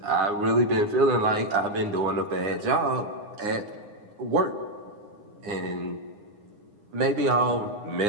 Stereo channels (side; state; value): left; late; 9.7 ms